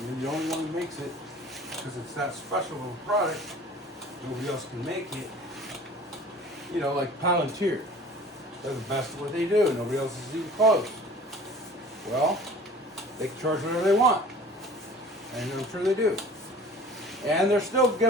you're the only one who makes it because it's that special of a product, nobody else can make it. Like Palantir. They're the best at what they do. Nobody else is even close. Well, they can charge whatever they want. And I'm sure they do. And they're still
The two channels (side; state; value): both; normal; correlation 0.45